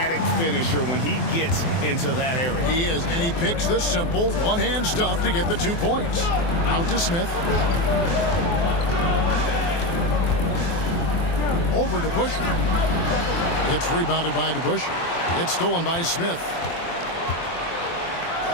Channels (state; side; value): late; right; 24 ms